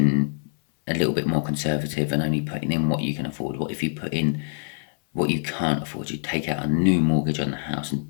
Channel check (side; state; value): right; silent; 61 dB below the other